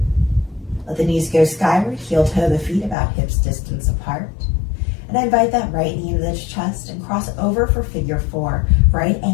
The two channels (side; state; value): right; drops out; at 3.0 s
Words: Let the knees go skyward, heel toe the feet about hips distance apart. And invite that right knee to the chest and cross over for figure four. Right